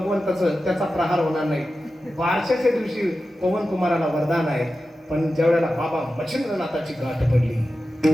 त्याचा प्रहार होणार नाही. बारशाच्या दिवशी पवन कुमाराला वरदान आहे. पण ज्यावेळेला बाबा मच्छिंद्रनाथाची गाठ पडली,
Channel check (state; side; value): normal; both; correlation 0.93